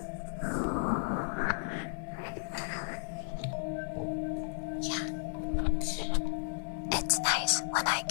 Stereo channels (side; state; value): right; silent; 55 dB below the other